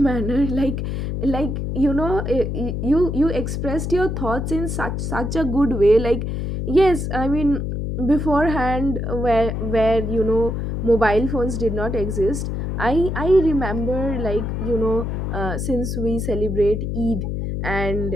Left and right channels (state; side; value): noise; left; hum, 2 dB below the sound